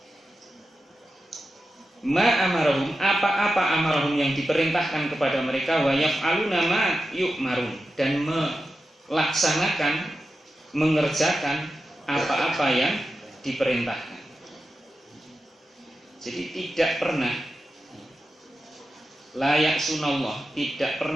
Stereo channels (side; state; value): both; normal; correlation 0.91